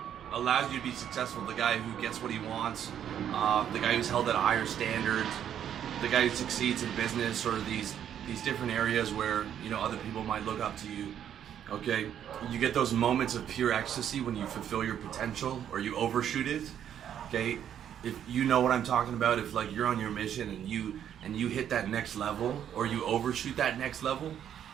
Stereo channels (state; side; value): quieter; left; 9.7 dB